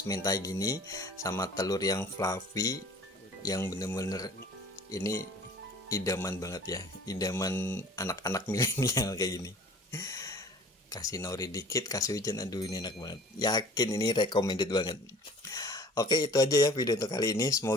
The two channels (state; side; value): normal; both; correlation 0.48